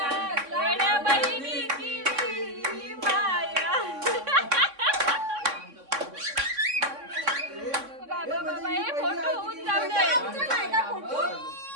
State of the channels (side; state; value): left; late; 3.6 ms